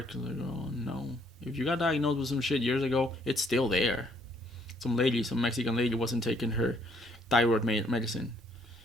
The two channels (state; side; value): normal; both; correlation 0.67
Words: Like, oh, no. If you got diagnosed with some shit years ago, it's still there. Some Mexican lady wasn't taking her thyroid medicine.